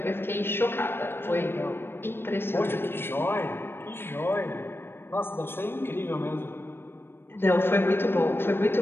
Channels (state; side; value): late; right; 0.11 ms